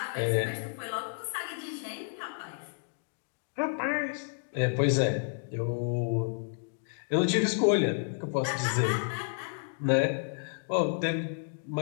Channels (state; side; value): silent; right; digital silence